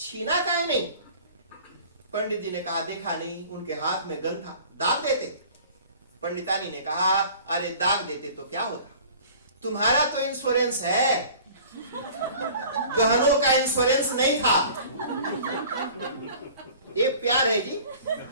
काहे नहीं। पंडित जी ने कहा देखा नहीं, उनके हाथ में गन था, दाग देते। पंडितानी ने कहा अरे दाग देते तो क्या होता, तुम्हारा तो इंश्योरेंस है, गहनों का इंश्योरेंस नहीं था। ये प्यार है जी,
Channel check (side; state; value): both; inverted; correlation -0.46